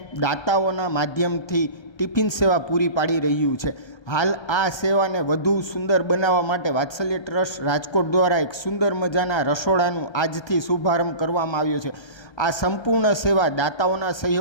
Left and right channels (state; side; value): late; right; 1.3 ms